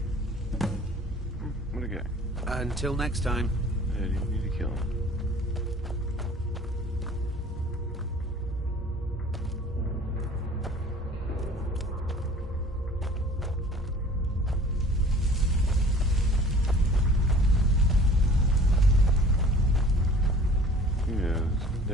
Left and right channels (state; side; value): normal; both; correlation 0.48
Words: What a guy. Until next time. Yeah, you need to kill him. Yeah, the